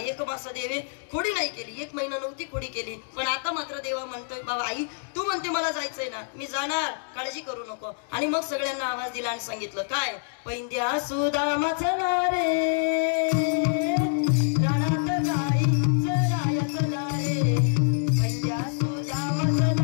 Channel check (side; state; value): right; silent; digital silence